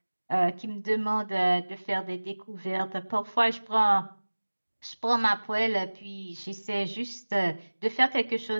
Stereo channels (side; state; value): both; inverted; correlation -1.00